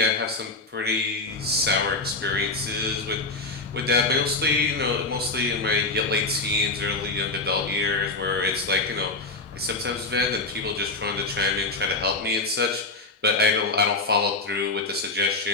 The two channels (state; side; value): quieter; right; 3.3 dB